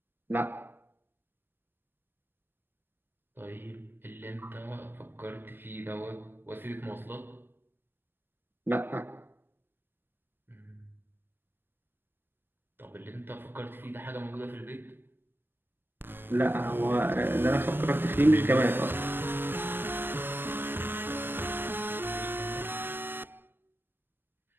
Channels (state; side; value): late; left; 0.095 ms